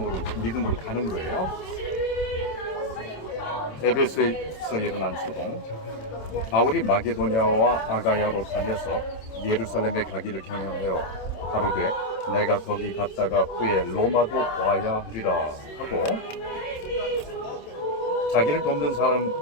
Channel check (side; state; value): right; late; 27 ms